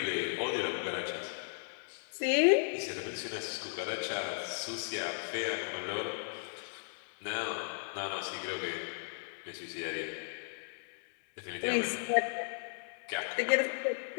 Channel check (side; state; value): right; silent; 54 dB below the other